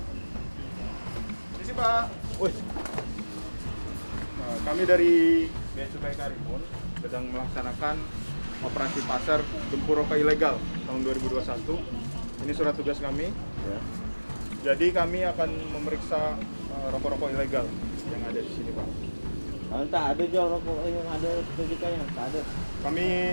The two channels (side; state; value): both; inverted; correlation -1.00